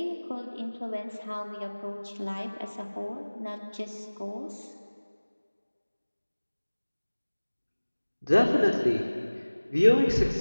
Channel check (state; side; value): inverted; both; correlation -1.00